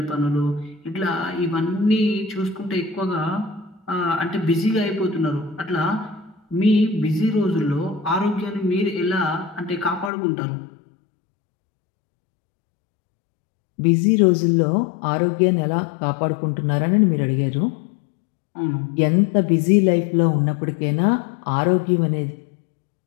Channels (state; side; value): drops out; right; at 10.1 s